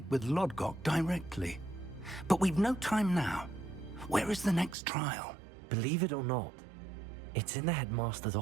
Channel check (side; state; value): left; drops out; at 4.8 s